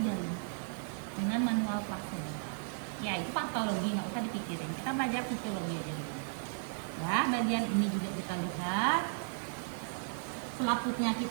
dalam dengan manual plasenta. Ya, itu patologi, nggak usah dipikirin. Kita belajar fisiologi aja gitu. Ya, bagian ini juga kita lihat. Selaputnya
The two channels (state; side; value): silent; left; 54 dB below the other